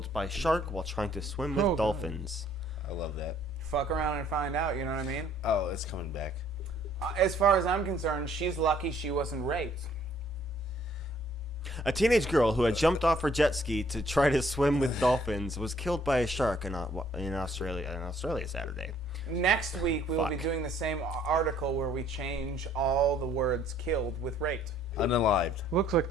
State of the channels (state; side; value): normal; both; correlation 0.62